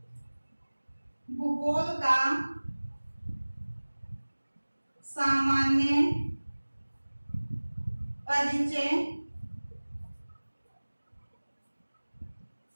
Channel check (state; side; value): inverted; both; correlation -1.00